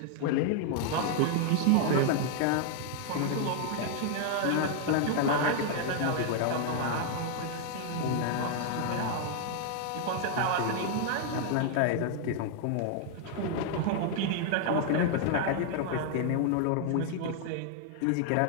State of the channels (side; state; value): both; different; correlation 0.00